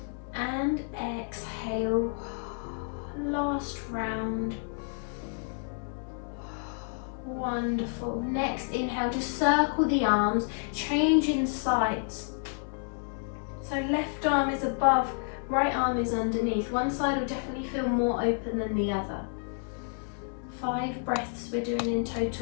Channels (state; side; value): silent; right; 58 dB below the other